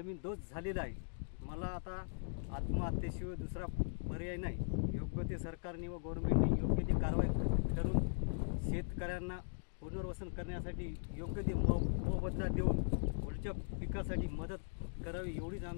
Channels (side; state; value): right; silent; digital silence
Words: झालेलं आहे। मला आता आत्महत्येशिवाय दुसरा पर्याय नाही। योग्य ते सरकारने व गव्हर्नमेंटने योग्य ती कारवाई करून शेतकऱ्यांना पुनर्वसन करण्यासाठी योग्य ते मोबदला देऊन पुढच्या पिकासाठी मदत करावी एवढीच